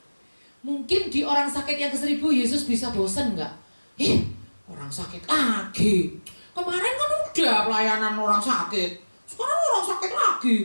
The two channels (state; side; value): inverted; both; correlation -1.00